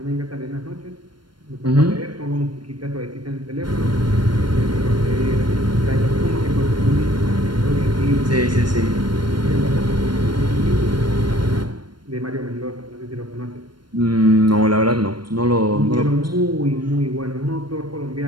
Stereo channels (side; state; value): left; late; 0.72 ms